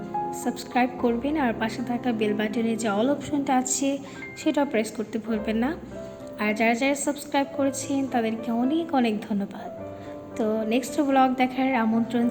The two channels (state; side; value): identical; both; correlation 1.00